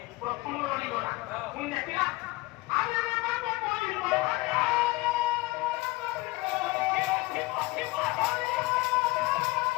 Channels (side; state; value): right; quieter; 21.7 dB